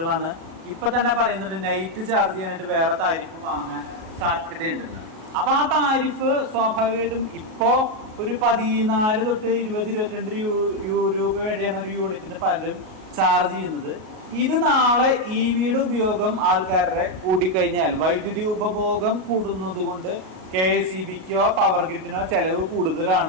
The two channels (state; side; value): late; left; 38 ms